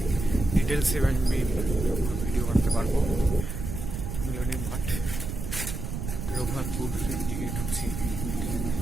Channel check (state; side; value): noise; right; rumble, 5 dB below the sound